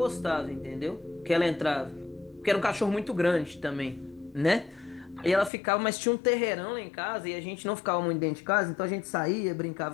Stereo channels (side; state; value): right; drops out; at 5.5 s